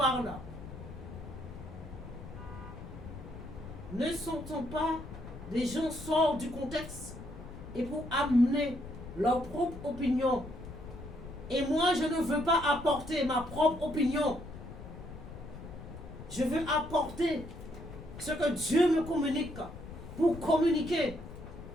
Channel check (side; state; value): left; noise; rumble, 13 dB below the sound